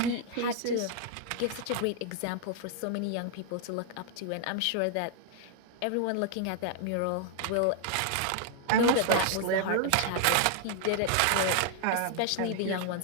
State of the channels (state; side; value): different; both; correlation 0.00